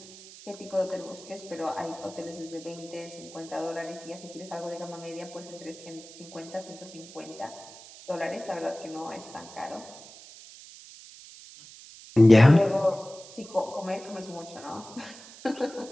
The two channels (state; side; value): noise; right; hiss, 18 dB below the sound